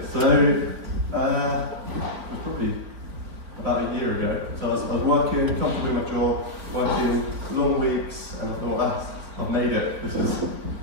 so it was probably about a year ago. So I was working, comfortable in my job, working long weeks, and I thought, I've made it. This is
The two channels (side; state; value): left; late; 4.2 ms